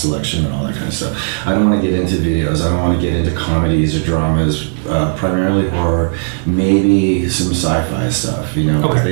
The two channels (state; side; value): silent; left; digital silence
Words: selection and all that kind of stuff. I don't want to get into videos. I don't want to get into comedies or dramas. Primarily horror, maybe some sci-fi stuff. You know, 'cause